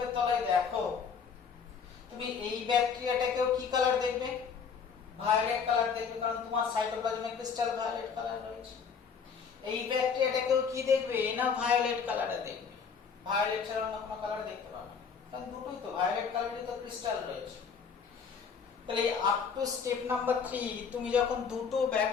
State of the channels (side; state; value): right; quieter; 6.2 dB